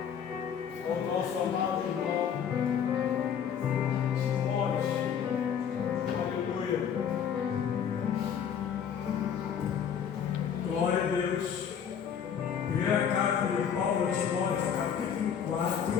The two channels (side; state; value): right; quieter; 8.0 dB